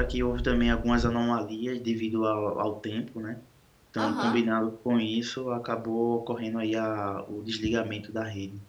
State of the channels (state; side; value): identical; both; correlation 1.00